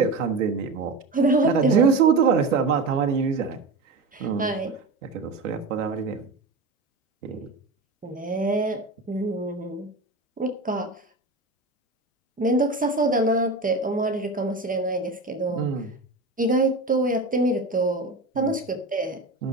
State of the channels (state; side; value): quieter; left; 3.2 dB